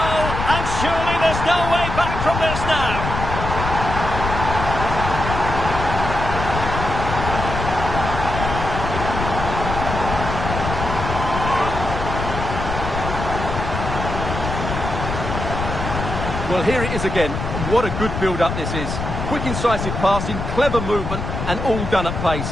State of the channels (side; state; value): left; noise; rumble, 4 dB below the sound